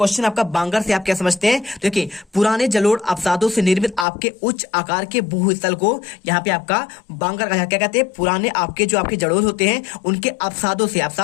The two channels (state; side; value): drops out; right; at 4.0 s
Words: आपका बांगर से आप क्या समझते हैं। देखिए पुराने जलोढ़ अवसादों से निर्मित आपके उच्च आकार के भूस्थल को यहाँ पे आपका बांगर कहा, क्या कहते हैं पुराने आपके जो आपके जलोढ़ होते हैं उनके अवसादों से,